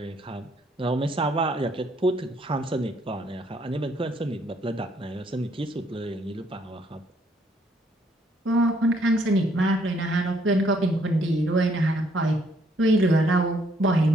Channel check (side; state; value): both; normal; correlation 0.68